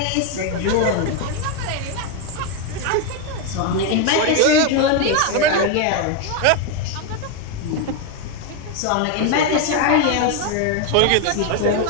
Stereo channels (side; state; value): both; different; correlation 0.02